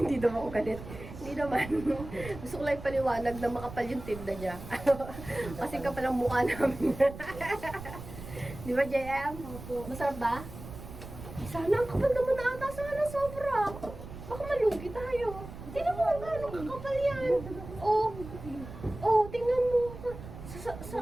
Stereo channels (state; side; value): noise; right; rumble, 13 dB below the sound